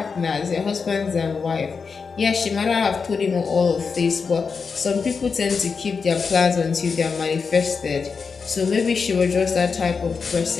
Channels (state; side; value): quieter; right; 5.3 dB